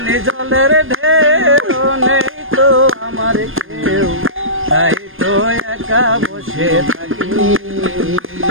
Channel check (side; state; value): left; late; 0.59 ms